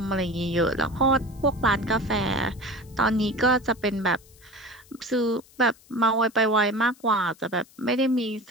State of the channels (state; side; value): noise; left; hiss, 27 dB below the sound